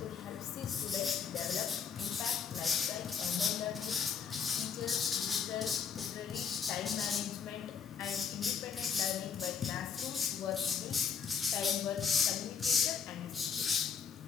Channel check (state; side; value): quieter; right; 6.8 dB